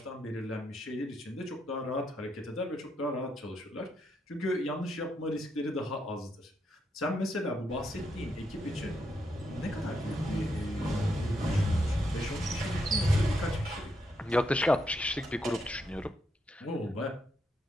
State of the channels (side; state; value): both; normal; correlation 0.79